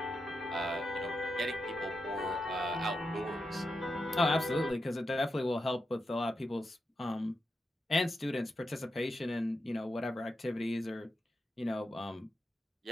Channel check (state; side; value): normal; both; correlation 0.87